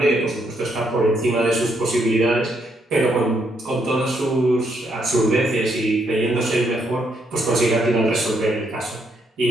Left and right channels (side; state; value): both; normal; correlation 0.75